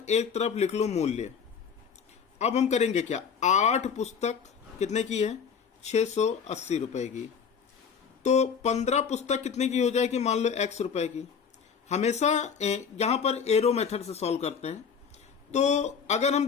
एक तरफ लिख लो मूल्य। अब हम करेंगे क्या, 8 पुस्तक कितने की है, 680 रुपए की, तो 15 पुस्तक कितने की हो जाएगी, मान लो x रुपए की। हमेशा यहां पर एरो मेथड से सॉल्व करते हैं। तो अगर हम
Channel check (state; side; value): quieter; right; 6.5 dB